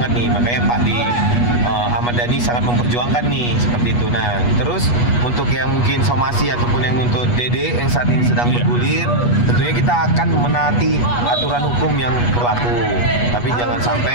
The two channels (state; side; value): late; right; 8.3 ms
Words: nih, makanya Pak Ahmad Dhani sangat memperjuangkan nih seperti itu. Nah, terus untuk yang mungkin somasi ataupun yang untuk Dede yang saat ini sedang bergulir, tentunya kita akan menaati aturan hukum yang berlaku. Tapi jangan